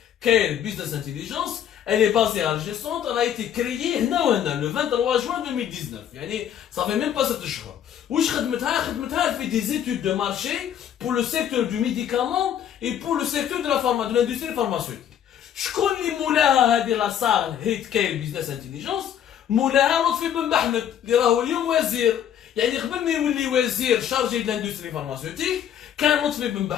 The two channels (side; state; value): right; quieter; 9.8 dB